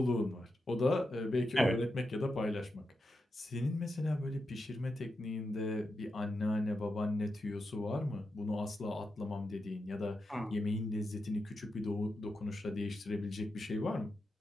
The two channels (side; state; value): both; normal; correlation 0.88